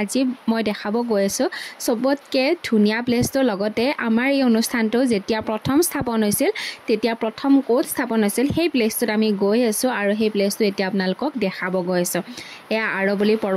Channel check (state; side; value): identical; both; correlation 1.00